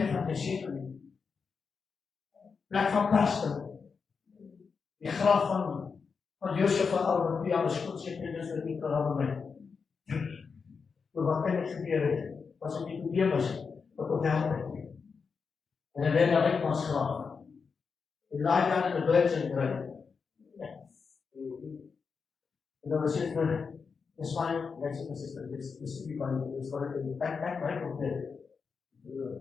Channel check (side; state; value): right; quieter; 5.4 dB